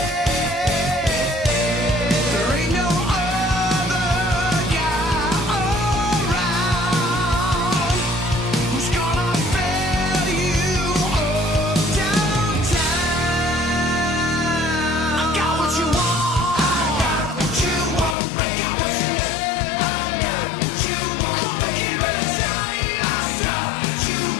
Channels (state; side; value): drops out; right; at 18.2 s